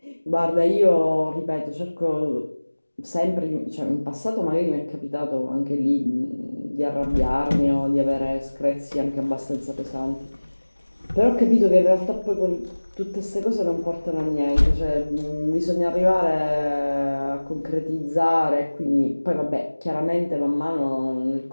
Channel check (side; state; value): both; inverted; correlation -1.00